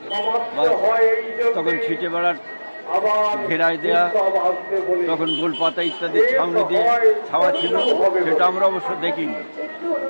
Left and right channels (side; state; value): both; inverted; correlation -1.00